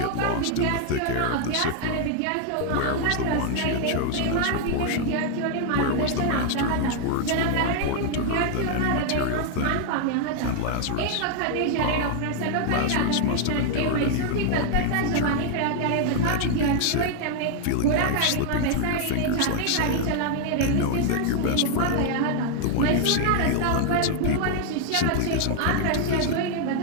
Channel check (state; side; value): different; both; correlation 0.00